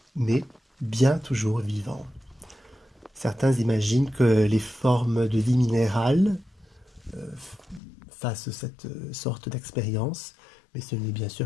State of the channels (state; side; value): drops out; right; at 7.8 s